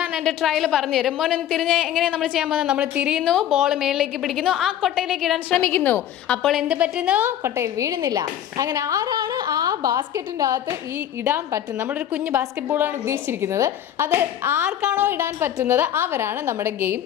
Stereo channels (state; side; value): quieter; right; 10.9 dB